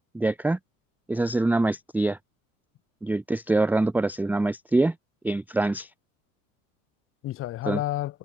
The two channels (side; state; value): both; normal; correlation 0.89